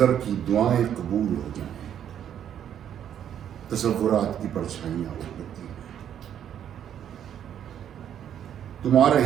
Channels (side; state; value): left; quieter; 9.7 dB